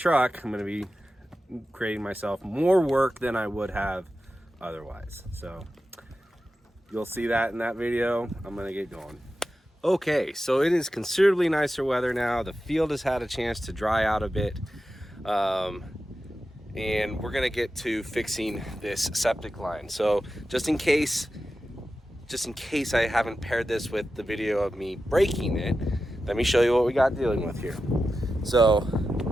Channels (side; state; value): both; normal; correlation 0.92